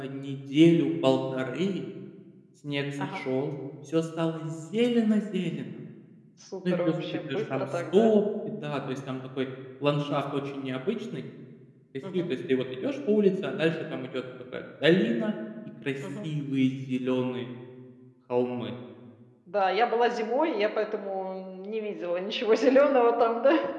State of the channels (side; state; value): both; identical; correlation 1.00